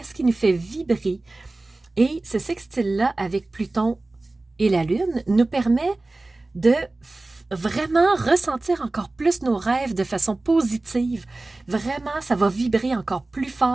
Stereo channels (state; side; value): quieter; left; 3.0 dB